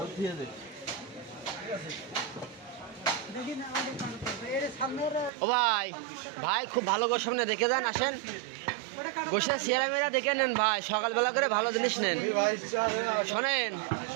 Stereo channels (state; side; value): drops out; left; at 5.3 s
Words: দিয়ে দে ও ভাই ভাই খুব ভালো গোশ সামনে দেখে যান আসেন গোশা চেহারা মেরা দেখে নেন ভাই সকালবেলা করে ভালো জিনিস নেন শোনেন